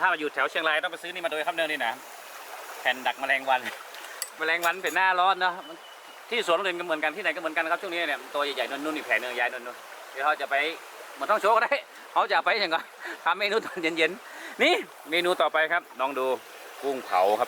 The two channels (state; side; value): identical; both; correlation 1.00